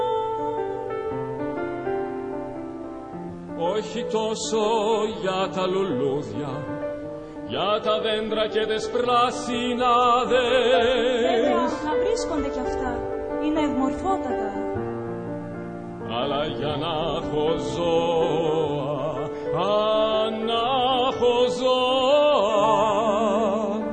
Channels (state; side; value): identical; both; correlation 1.00